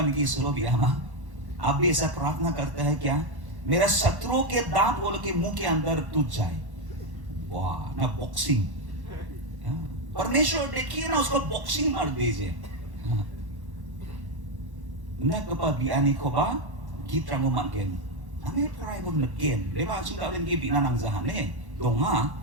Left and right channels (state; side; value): late; left; 1.1 ms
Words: की सुरो भी हम आप भी ऐसा प्रार्थना करते हैं क्या मेरा शत्रुओं के दांत बोल के मुंह के अंदर टूट जाए वाह ना बॉक्सिंग परमेश्वर देखिए ना उसको बॉक्सिंग मार दीजिए na kapag ani ko ba gitrang mo magen ame try mo nagen leba sing daw gi binanang zahane donga